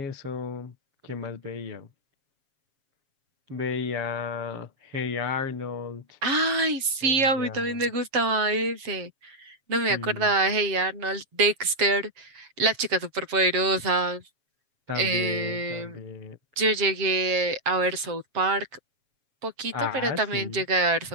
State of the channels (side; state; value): left; late; 7.3 ms